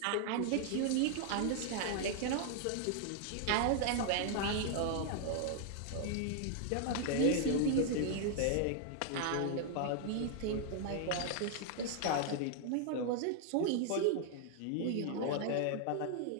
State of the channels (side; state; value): both; different; correlation 0.00